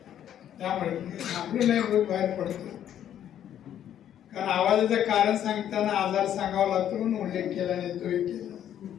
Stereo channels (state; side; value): quieter; right; 10.5 dB